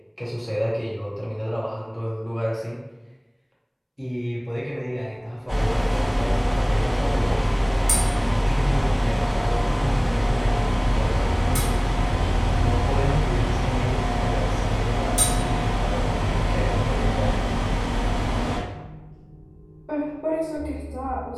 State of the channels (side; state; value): both; identical; correlation 1.00